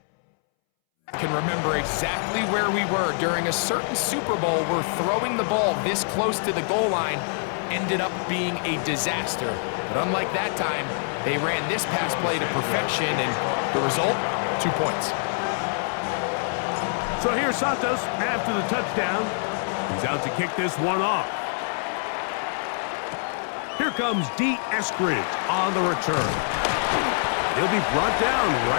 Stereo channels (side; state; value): right; silent; 62 dB below the other